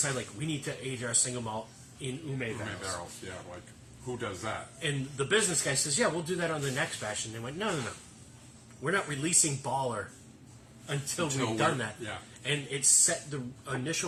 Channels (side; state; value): both; identical; correlation 1.00